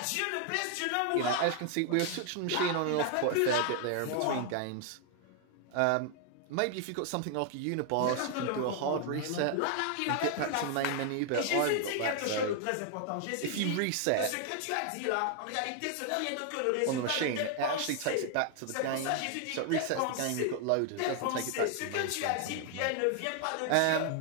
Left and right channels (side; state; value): both; different; correlation 0.00